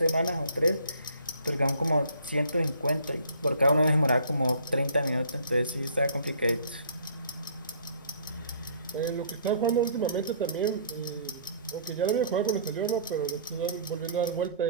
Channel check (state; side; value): inverted; both; correlation -0.54